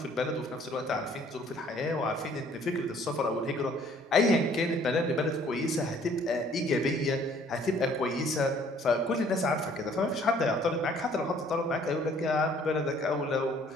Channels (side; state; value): both; normal; correlation 0.58